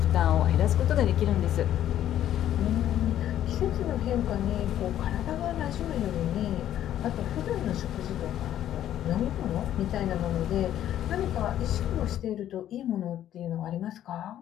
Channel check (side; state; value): right; quieter; 11.5 dB